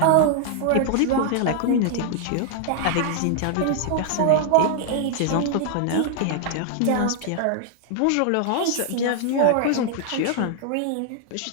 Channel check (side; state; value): both; different; correlation 0.00